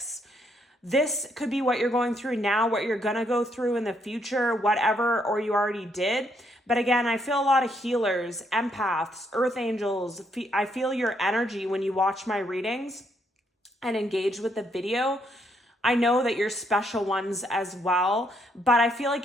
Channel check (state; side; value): normal; both; correlation 0.73